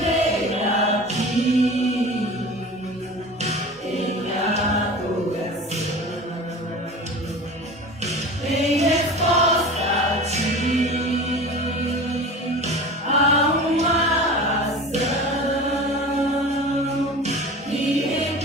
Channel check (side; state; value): both; normal; correlation 0.36